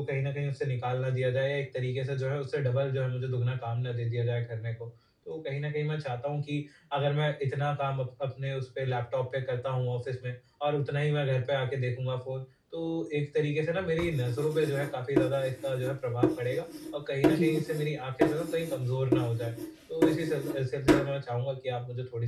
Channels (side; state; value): both; identical; correlation 1.00